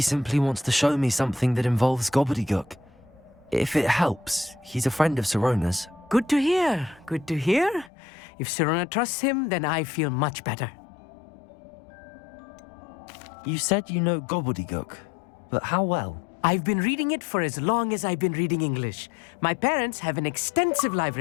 simply wants to show me something that involves gobbledygook. If it helps, he's a friend of Sirona's. Good to hear. Good to hear. If Sirona trusts him, then I feel much better. You said you know gobbledygook, but how well? I've been reading it for as long as I've been reading English. My parents have an extensive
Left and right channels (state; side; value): drops out; right; at 7.9 s